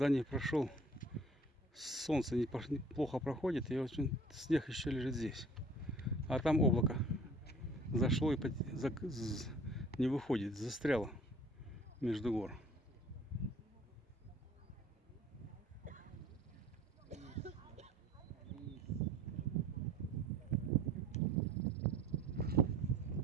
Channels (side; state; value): both; normal; correlation 0.50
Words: не прошел. Солнце плохо проходит, и очень снег еще лежит здесь. А там облако зашло и не выходит, застряло между гор.